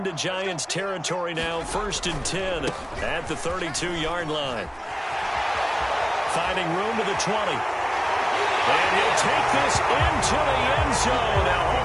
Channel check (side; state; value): both; identical; correlation 1.00